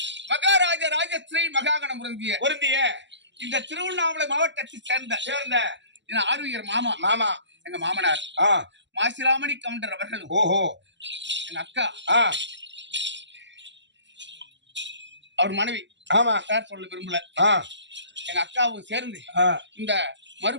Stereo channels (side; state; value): left; late; 0.52 ms